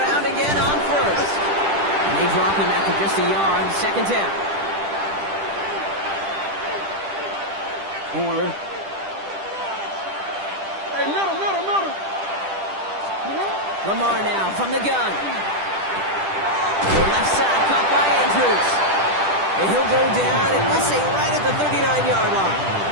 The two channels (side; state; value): left; late; 10 ms